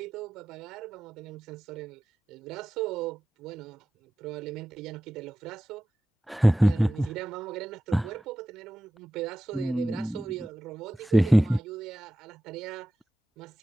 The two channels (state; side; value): normal; both; correlation 0.93